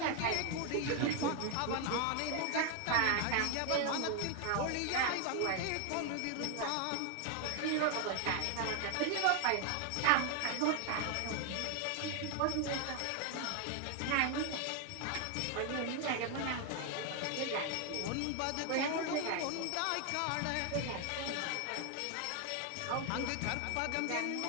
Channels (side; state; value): both; different; correlation 0.01